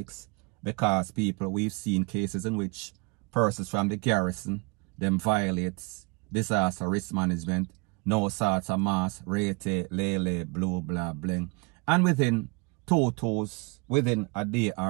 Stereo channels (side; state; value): left; quieter; 28.6 dB